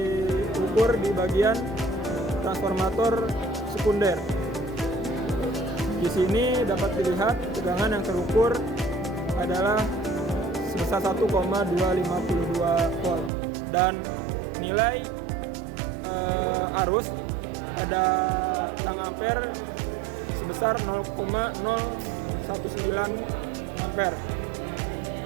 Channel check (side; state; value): left; drops out; at 13.3 s